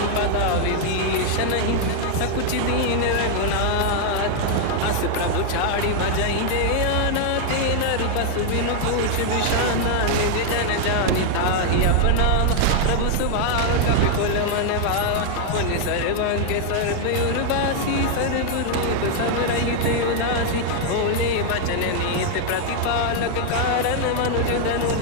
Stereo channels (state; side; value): different; both; correlation 0.00